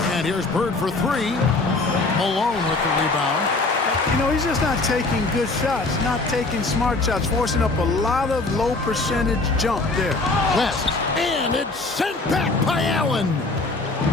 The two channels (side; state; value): right; quieter; 3.3 dB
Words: And here's Bird for 3. Malone with the rebound. You know, he's just not taking good shots, not taking smart shots, forcing up a lot of low percentage jump there. West. And it's sent back by Allen.